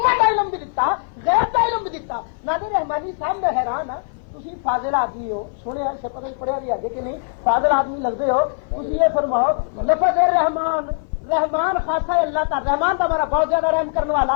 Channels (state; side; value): silent; right; 57 dB below the other